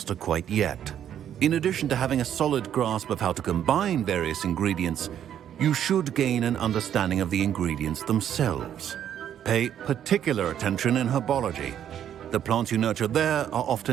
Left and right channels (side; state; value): left; quieter; 10.0 dB